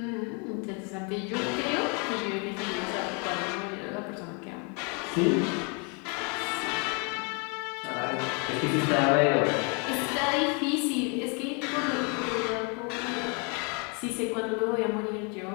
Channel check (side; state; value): right; quieter; 34.4 dB